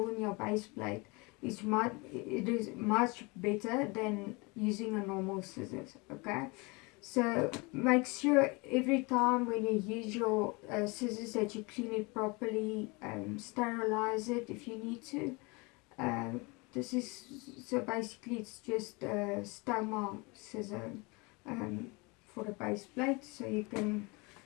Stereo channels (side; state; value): right; quieter; 27.4 dB